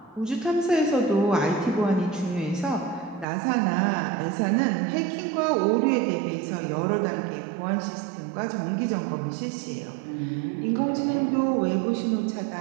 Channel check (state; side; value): drops out; left; at 3.2 s